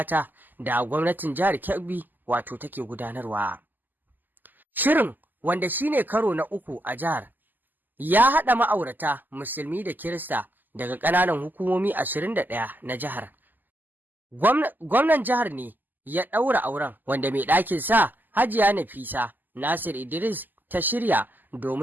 da gwamnatin jihar Kebbi wato take gudanarwa. Shirin, wanda shine karo na 3 a jihar, ya haɗa ma'aurata musulmi da Kirista daga ƙananan hukumomi 21 na jihar. Gwamnan jihar ne ya ɗaura auren, wanda mai ɗakin sa Hajiya Nafisa Nasir Idris ta shirya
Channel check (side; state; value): left; late; 0.087 ms